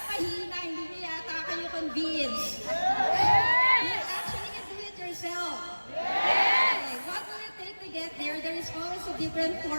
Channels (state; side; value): inverted; both; correlation -1.00